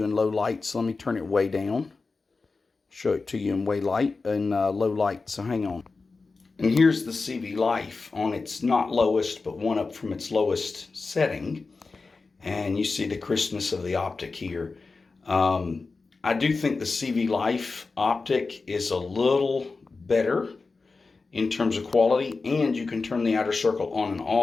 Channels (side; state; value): right; quieter; 4.1 dB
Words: in low light. So let me turn it way down. Show it to you in low light. So hang on. And here's the CV Life on its not lowest, but one up from its lowest setting. And you see the crispness of the optic here. I do think the CV Life optic is a little better in terms of quality, and you can turn the outer circle on and